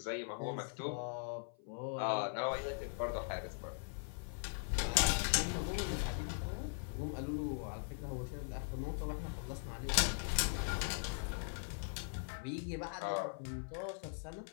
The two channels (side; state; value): right; silent; 51 dB below the other